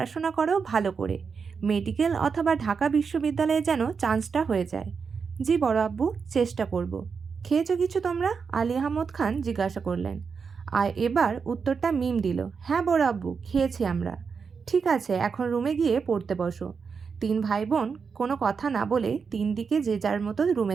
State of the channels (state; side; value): quieter; left; 5.7 dB